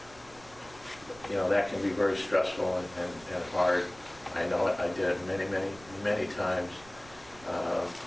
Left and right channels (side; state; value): right; noise; rumble, 22 dB below the sound